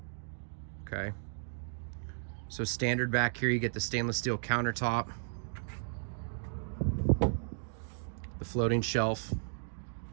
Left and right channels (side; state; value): left; silent; digital silence